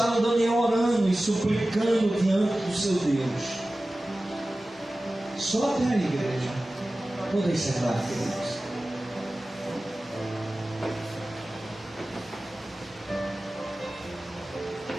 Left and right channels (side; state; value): both; normal; correlation 0.96